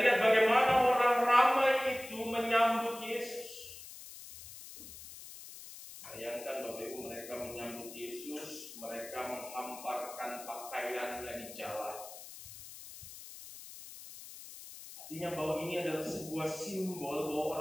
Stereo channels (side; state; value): left; noise; hiss, 14 dB below the sound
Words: lihat bagaimana orang ramai itu menyambut Yesus. Bayangkan Bapak Ibu, mereka menyambut Yesus, mereka menghamparkan pakaiannya di jalan. Artinya bahwa ini adalah sebuah simbol bahwa